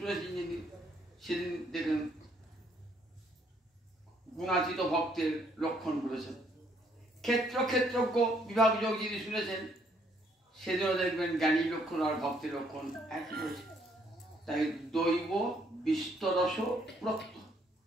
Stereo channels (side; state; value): both; normal; correlation 0.68